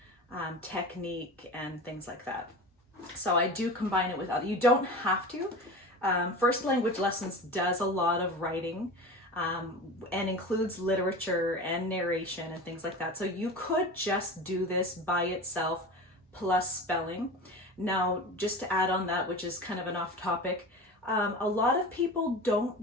technique and things like that. So I do combine it with other. You don't have to. First language lessons does a lot of writing and includes literature and narration and things like that. So you could just do this by itself plus spelling. Now, just to add on that, which is kind of an off topic, a lot of people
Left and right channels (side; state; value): both; normal; correlation 0.32